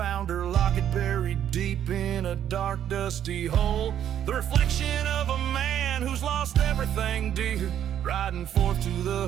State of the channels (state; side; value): quieter; left; 10.2 dB